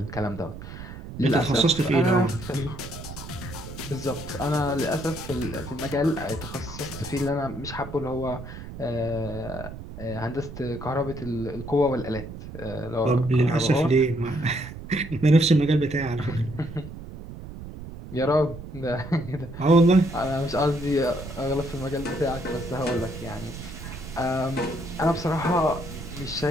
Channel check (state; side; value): noise; right; rumble, 12 dB below the sound